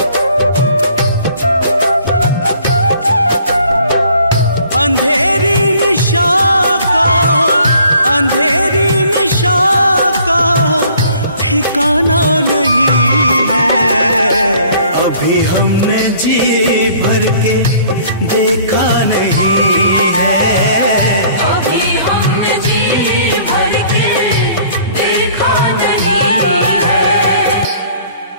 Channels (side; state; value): both; inverted; correlation -0.56